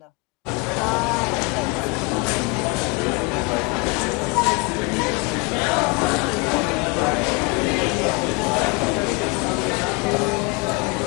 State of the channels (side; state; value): right; quieter; 28.5 dB